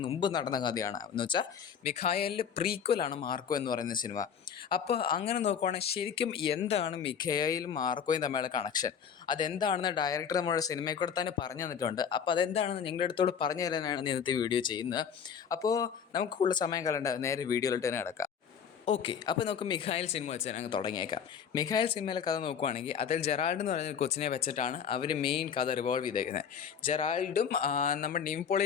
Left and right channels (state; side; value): quieter; right; 7.5 dB